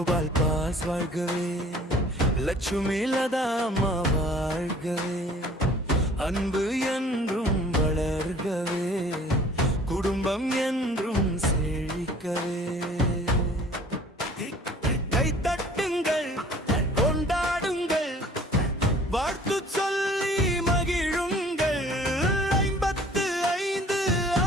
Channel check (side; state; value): both; normal; correlation 0.51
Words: பாஸ் வாழ்கவே, லட்சுமி லதா அம்மா வாழ்கவே. அன்பு என்றும் வளர்கவே, குடும்பம் என்றும் செழிக்கவே. கைத்தட்டுங்கள், கொண்டாடுங்கள், வாழ்த்து சொல்லி மகிழுங்கள். 55